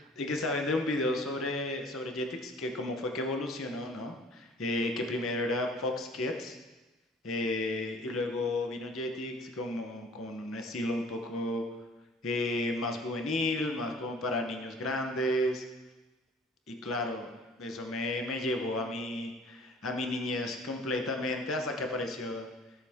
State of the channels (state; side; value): normal; both; correlation 0.51